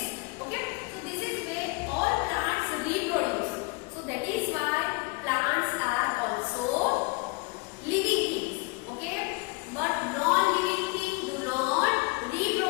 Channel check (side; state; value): right; quieter; 28.2 dB